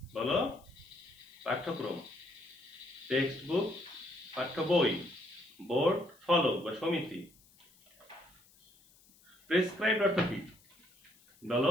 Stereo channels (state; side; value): noise; left; hiss, 28 dB below the sound